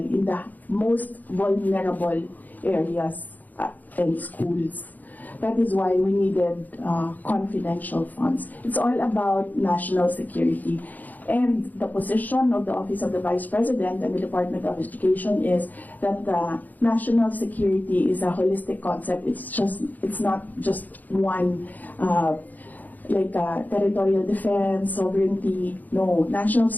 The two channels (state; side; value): late; right; 0.082 ms